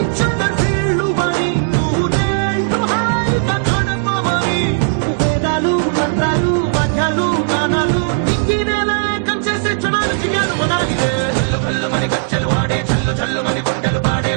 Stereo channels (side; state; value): left; silent; 66 dB below the other